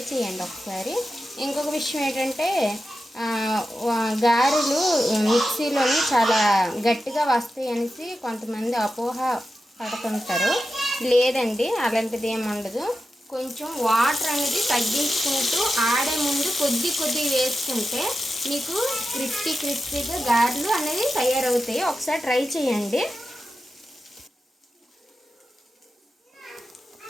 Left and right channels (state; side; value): normal; both; correlation 0.91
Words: చేయండి ఒకసారి. ఇంకొక విషయం ఏంటంటే గారెలు మిక్సీలోని చాలా గట్టిగా వస్తాయి అనేసి కొంతమంది అపోహ పడుతుంటారు. లేదండి, అలాంటిది ఏమి ఉండదు. కొంచెం వాటర్ అనేది తగ్గించుకుంటూ ఆడే ముందు కొద్ది వేసుకుంటే మీకు క్రిస్పీగా గారెలు అనేది తయారవుతాయి. ఒకసారి ట్రై చేయండి.